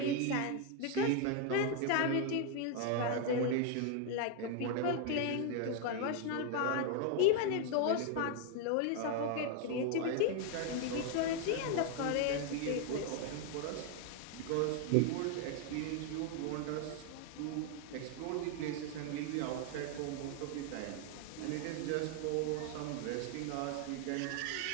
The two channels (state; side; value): different; both; correlation 0.00